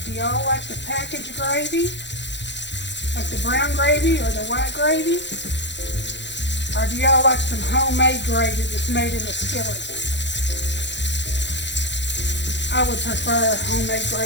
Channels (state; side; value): late; right; 0.52 ms